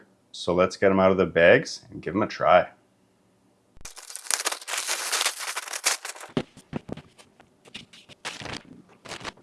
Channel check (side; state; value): both; identical; correlation 1.00